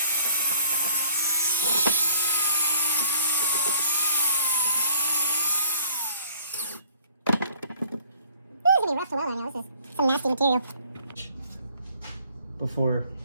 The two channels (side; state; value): both; inverted; correlation -0.58